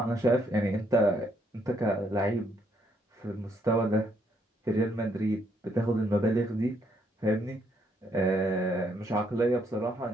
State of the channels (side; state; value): both; normal; correlation 0.72